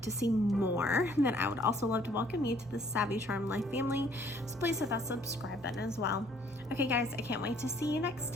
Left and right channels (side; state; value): both; normal; correlation 0.61